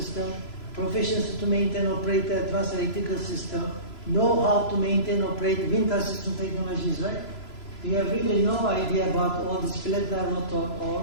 Proficiency to maintain, operate advanced electrical system. Know how to maintain, operate wind assistant technologies, right? We have really no idea about all these flat-line rotor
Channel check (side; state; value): right; late; 3.0 ms